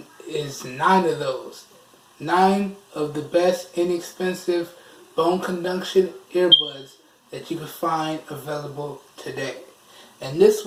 is 9 of those. 9 of the best inexpensive bone conduction earbuds that you can find available today. And this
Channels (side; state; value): both; identical; correlation 1.00